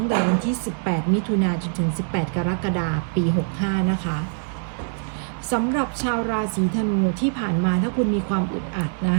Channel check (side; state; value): left; silent; digital silence